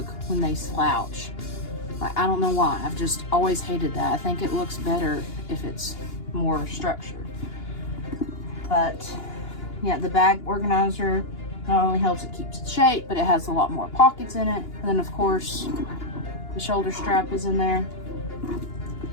when they slouch. Like, I don't know why. I've just always hated that. I think it looks better if it's more structured. But yeah, the bag organizer not only helps it keeps its shape, but it has a lot more pockets in it. And then of course, the shoulder strap is in there.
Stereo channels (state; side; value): late; right; 2.9 ms